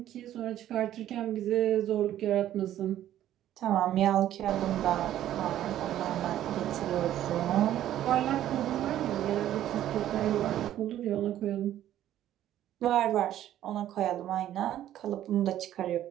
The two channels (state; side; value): quieter; left; 12.2 dB